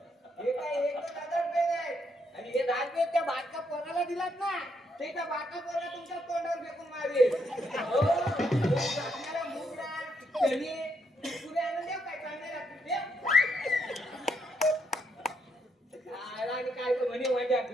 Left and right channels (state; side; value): normal; both; correlation 0.76